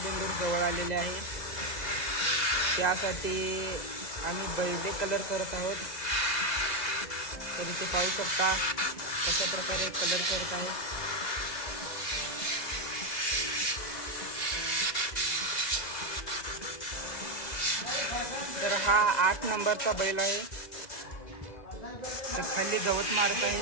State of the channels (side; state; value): right; late; 2.0 ms